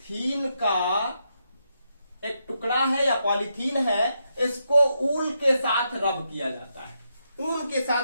का एक टुकड़ा है या पॉलीथीन है, इसको ऊल के साथ रब किया जाता है, ऊल के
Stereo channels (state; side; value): inverted; both; correlation -0.82